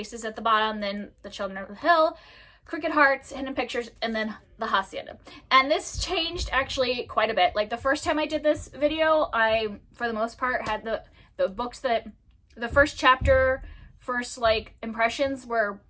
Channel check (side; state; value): both; identical; correlation 1.00